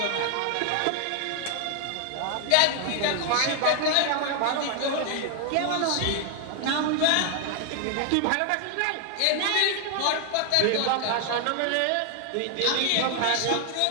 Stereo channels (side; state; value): both; different; correlation 0.00